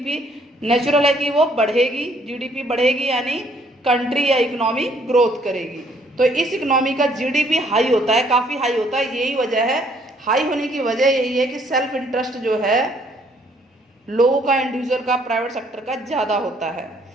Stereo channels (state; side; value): normal; both; correlation 0.65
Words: नेचुरल है कि वो बढ़ेगी। जीडीपी बढ़ेगी यानी कंट्री या इकोनॉमी ग्रोथ करेगी। तो इस इकोनॉमी का जीडीपी हाई होता है, काफ़ी हाई होता है। यही वजह है, हाई होने की वजह यही है कि सेल्फ इंटरेस्ट जो है लोगों का, इंडिविजुअल का, प्राइवेट सेक्टर का ज़्यादा होता है।